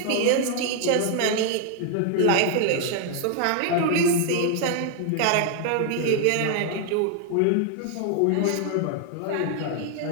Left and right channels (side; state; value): both; different; correlation 0.00